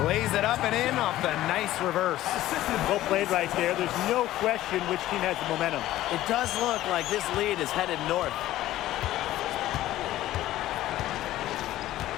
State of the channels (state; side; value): quieter; right; 14.7 dB